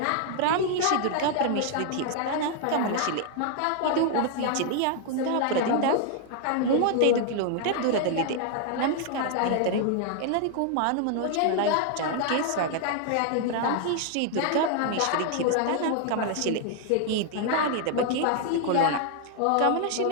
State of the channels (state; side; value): different; both; correlation 0.00